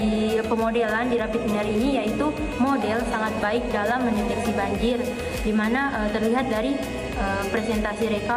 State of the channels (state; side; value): identical; both; correlation 1.00